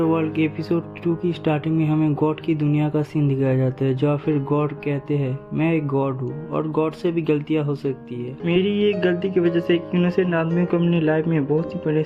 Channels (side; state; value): both; identical; correlation 1.00